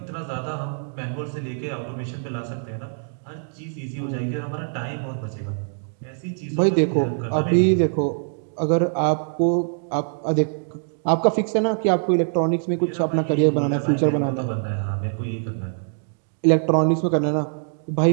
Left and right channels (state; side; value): silent; left; digital silence